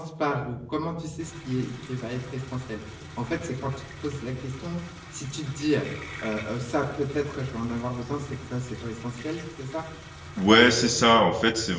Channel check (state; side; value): identical; both; correlation 1.00